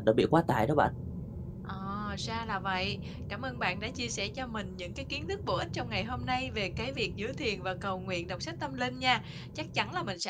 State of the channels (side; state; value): both; identical; correlation 1.00